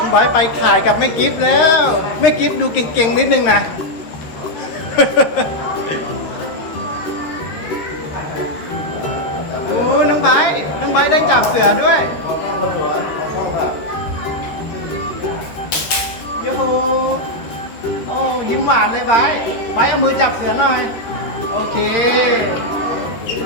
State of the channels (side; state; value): right; late; 13 ms